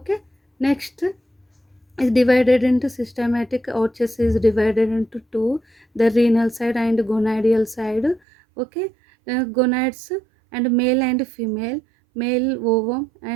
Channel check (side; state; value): left; drops out; at 8.2 s